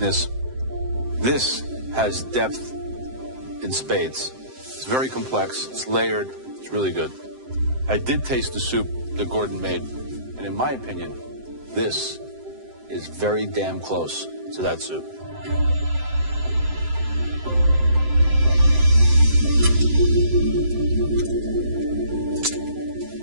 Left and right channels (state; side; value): late; left; 7.8 ms